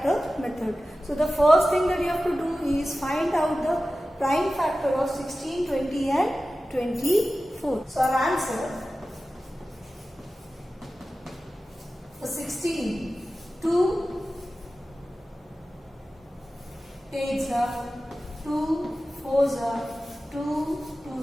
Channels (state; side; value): normal; both; correlation 0.95